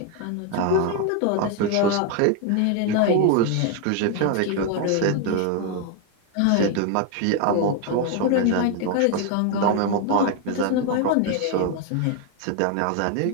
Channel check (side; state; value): both; different; correlation 0.01